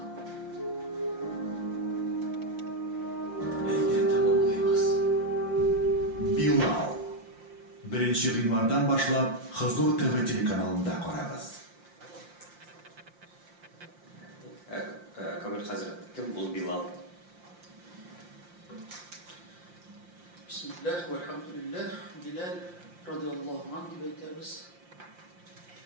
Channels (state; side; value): late; left; 5.7 ms